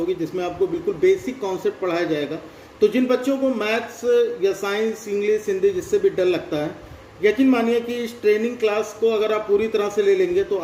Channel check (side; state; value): both; identical; correlation 1.00